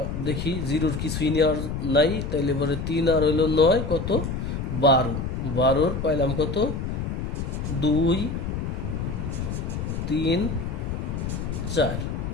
দেখি 0-র কিছুই নেওয়ার নাই, তাইলে পরে 3 আর হইলো 9 কত? 12, 12-র পাইলাম কত? 2 3 4।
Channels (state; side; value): noise; left; rumble, 3 dB below the sound